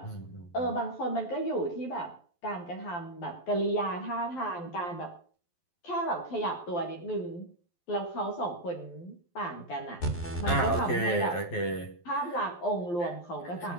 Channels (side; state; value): right; late; 12 ms